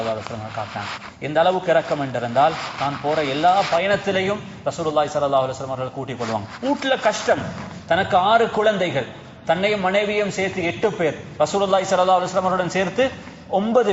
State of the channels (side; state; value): both; identical; correlation 1.00